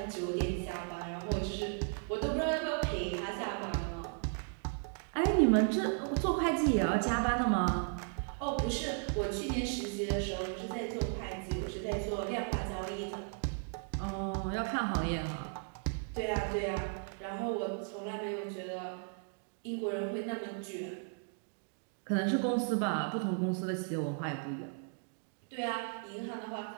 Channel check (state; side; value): silent; left; 54 dB below the other